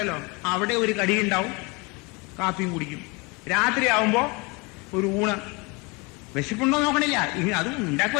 അവിടെ ഒരു കടി ഉണ്ടാവും, കാപ്പിയും കുടിക്കും. രാത്രി ആവുമ്പോ ഒരു ഊണ്. വിശപ്പുണ്ടോ നോക്കണില്ല, അതും ഉണ്ടാക്കി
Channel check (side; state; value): right; quieter; 27.6 dB